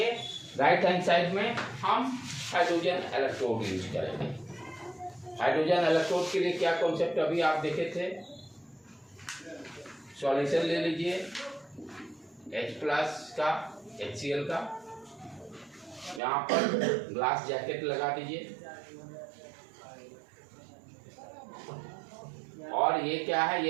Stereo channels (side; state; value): left; drops out; at 16.2 s